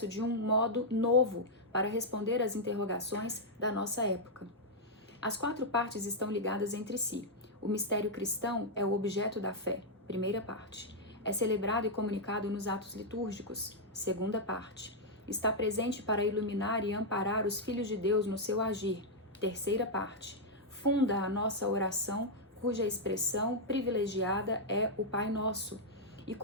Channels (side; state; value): both; normal; correlation -0.04